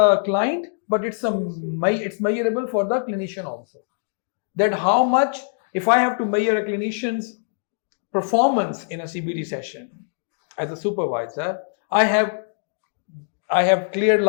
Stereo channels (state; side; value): silent; right; digital silence